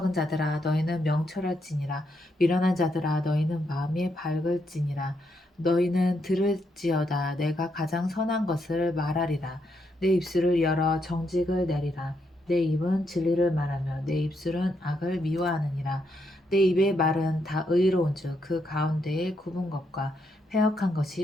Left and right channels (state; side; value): normal; both; correlation 0.78